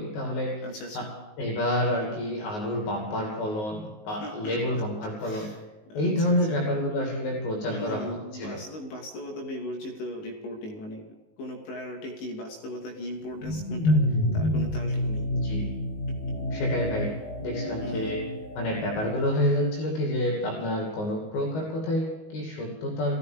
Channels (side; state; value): right; late; 19 ms